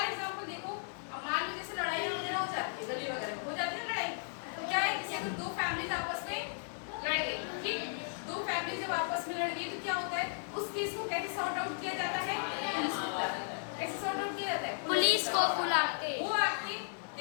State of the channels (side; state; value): right; silent; 54 dB below the other